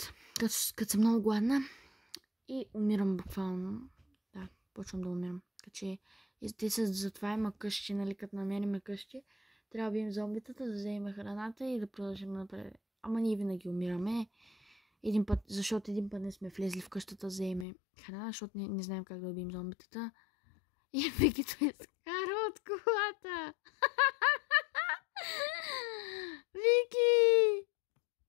като съм много гладна и умирам буквално. Да, почвам да умирам. Каче, те са затова има къщи, нали, като намерим къщи. Трябва да бием зомбитата, да вземем храната и да продължим напред. Ама ние винаги умираме. Защото един път не сме влезли в къщата да вземем храна, защото не знаем как да убием зомбитата. И Вики той скара от колата.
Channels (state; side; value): drops out; right; at 17.7 s